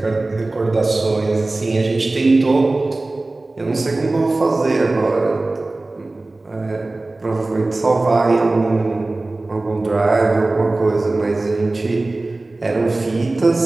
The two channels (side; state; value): left; quieter; 3.0 dB